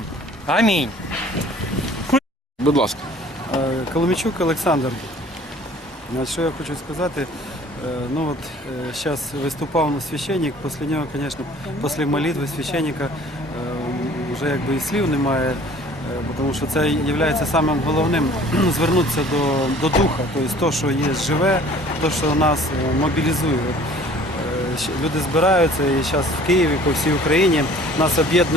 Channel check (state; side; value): normal; both; correlation 0.51